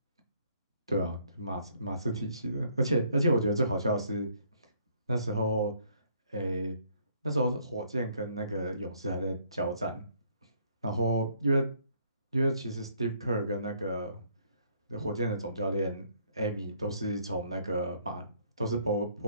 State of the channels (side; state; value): both; inverted; correlation -0.65